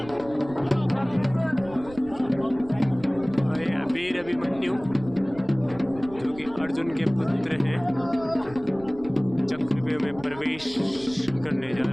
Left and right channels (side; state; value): right; noise; rumble, 18 dB below the sound